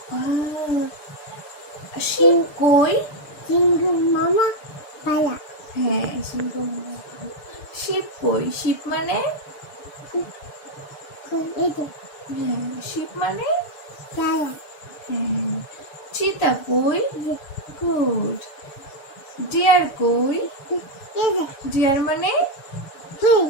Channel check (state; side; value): late; right; 6.7 ms